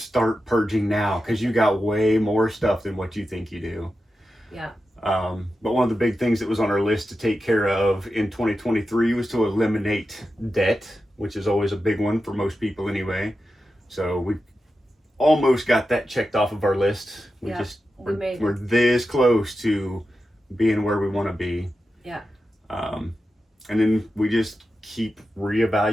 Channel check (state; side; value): normal; both; correlation 0.91